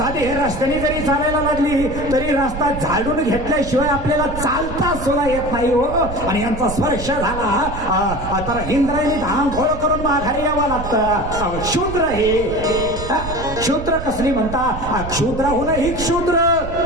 हे रस्त्याने जरी चालायला लागली तरी रस्ता झाडून घेतल्याशिवाय आपल्याला चालता सुद्धा येत नाही हो. आणि यांचा स्पर्श झाला तर इंद्रायणी धांघोळ करून माघारी यावं लागतं. शूद्र हे शूद्र कसली म्हणता? क्षुद्राहून ही क्षुद्र.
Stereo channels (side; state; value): right; noise; rumble, 9 dB below the sound